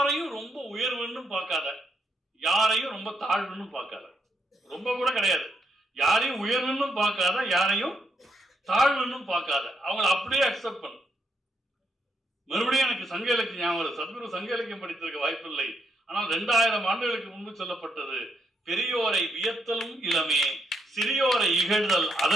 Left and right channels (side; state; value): both; normal; correlation 0.78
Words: ரொம்ப உயர்வுன்னு பார்க்காத, யாரையும் ரொம்ப தாழ்வுன்னு பார்க்காத, ரொம்ப கூட கிடையாது, யாரையும் உயர்வுன்னு பார்க்காத, யாரையும் தாழ்வுன்னு பார்க்காத, அவங்கள அப்படியே அக்செப்ட் பண்ணு. மறுபடியும் எனக்கு சங்க இலக்கியம் ஞாபகம், சத்குரு சங்க இலக்கியம் படித்திருக்க வாய்ப்பில்லை, ஆனால் 2000 ஆண்டுகளுக்கு முன்பு சொல்லப்பட்டது, பெரியோரை வியத்தலும் இளமே, சிறியோரை இகழ்தல்